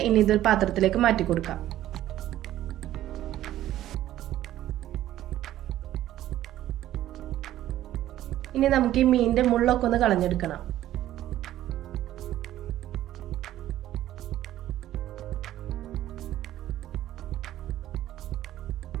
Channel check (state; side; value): quieter; left; 13.4 dB